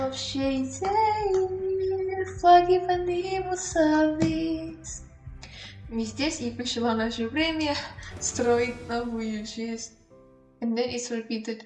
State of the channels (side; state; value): both; identical; correlation 1.00